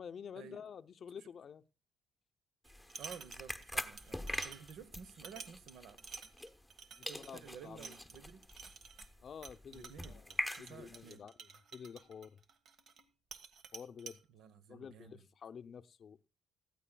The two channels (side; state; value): both; normal; correlation 0.87